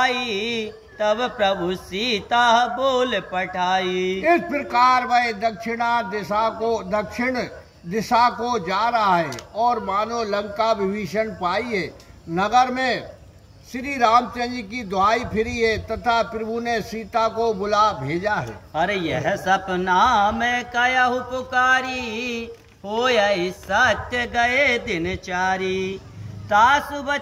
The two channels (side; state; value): both; identical; correlation 1.00